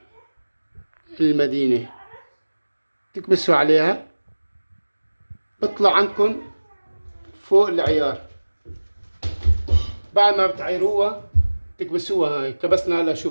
المدينة، تكبسوا عليها، بطلع عندكم فوق العيار. بعد ما بتعيروها تكبسوها. هاي كبسنا. هلا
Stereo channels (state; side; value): inverted; both; correlation -1.00